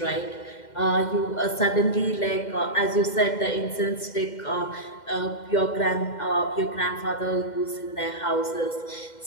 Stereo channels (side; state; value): right; late; 2.1 ms